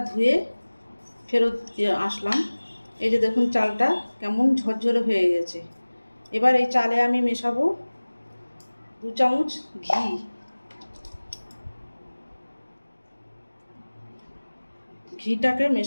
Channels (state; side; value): inverted; both; correlation -1.00